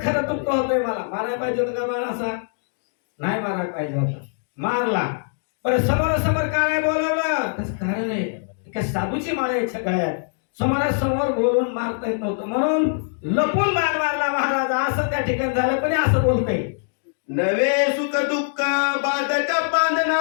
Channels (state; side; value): silent; right; digital silence